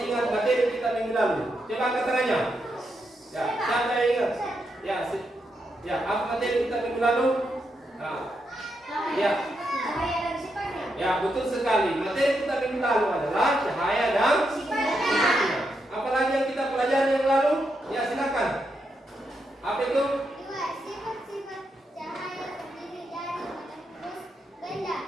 ingat materi kita minggu lalu? Coba angkat tangannya. Ya, siapa yang ingat? Ya, ya, apa materi kita minggu lalu? Nah, ya, ya, betul sekali. Materi kita minggu lalu adalah cahaya dan sifatnya. Apalagi yang kita pelajari yang lalu? Ya, silakan. Apa itu? Sifat-sifat cahaya terdiri dari terus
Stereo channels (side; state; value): both; normal; correlation 0.83